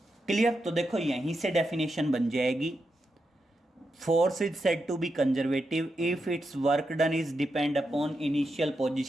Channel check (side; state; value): both; normal; correlation 0.86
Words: Clear? तो देखो यहीं से डेफिनेशन बन जाएगी। Force is said to be conservative if its work done is depend upon initial